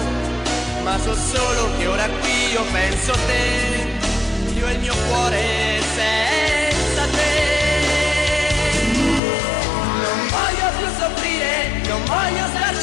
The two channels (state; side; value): drops out; right; at 9.2 s